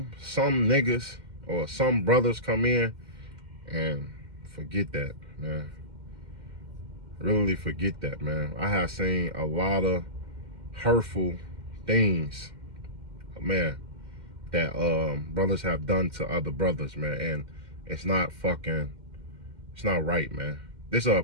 niggas or some brothers come in and forget that, man. Really forget that, man. I have seen a lot of hurtful things, man, that brothers have done to other brothers, man. And it's not right, man. This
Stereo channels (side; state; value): left; late; 2.1 ms